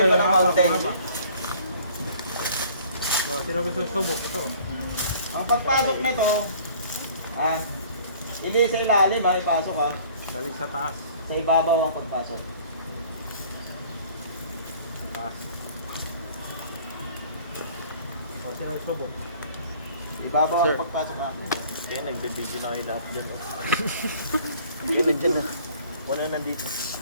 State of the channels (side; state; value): both; inverted; correlation -0.53